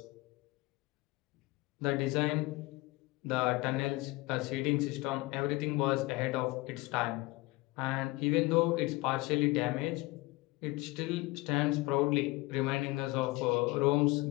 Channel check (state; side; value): quieter; right; 21.9 dB